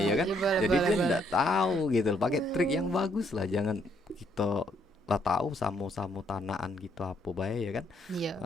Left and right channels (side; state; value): both; normal; correlation 0.71